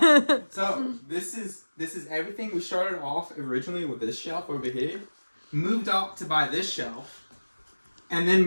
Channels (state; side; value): inverted; both; correlation -1.00